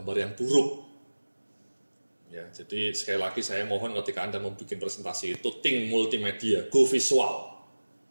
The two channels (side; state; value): both; inverted; correlation -1.00